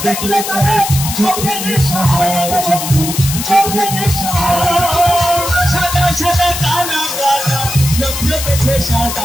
দেখলে তারে চোখে নেশা হয় চোখে নেশা হয় সাদা সাদা কালা কালা রং জমেছে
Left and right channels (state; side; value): noise; left; hiss, 5 dB below the sound